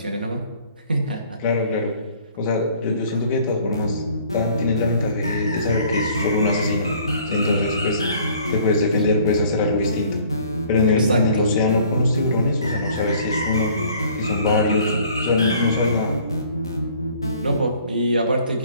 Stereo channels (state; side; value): inverted; both; correlation -0.56